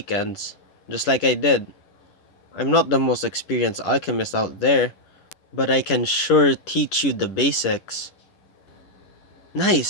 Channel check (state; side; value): late; right; 10 ms